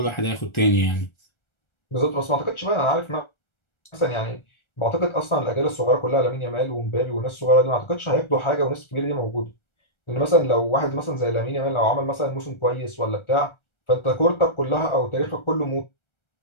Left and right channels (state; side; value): late; right; 1.3 ms